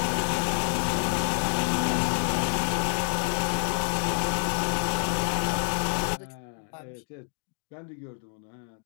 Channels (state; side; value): silent; right; digital silence